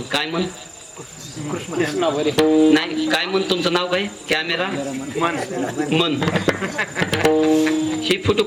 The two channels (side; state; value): both; identical; correlation 1.00